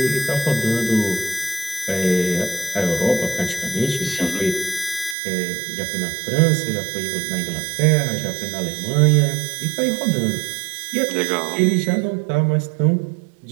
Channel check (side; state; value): left; drops out; at 5.2 s